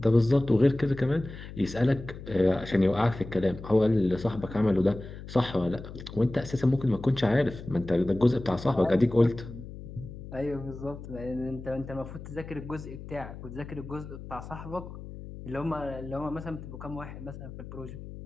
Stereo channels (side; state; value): left; noise; hum, 12 dB below the sound